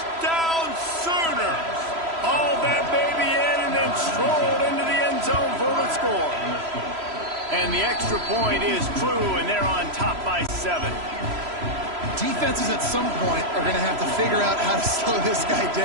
Sooners! Hauled that baby in and then strolled into the end zone for the score. And the extra point is true, and they're on top by 7. Defenses at some point are going to have to figure out how to slow this guy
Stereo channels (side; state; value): left; late; 3.0 ms